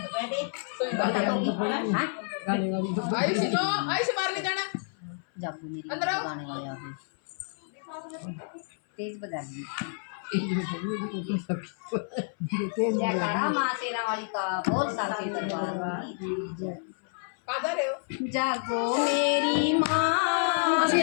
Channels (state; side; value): silent; right; 59 dB below the other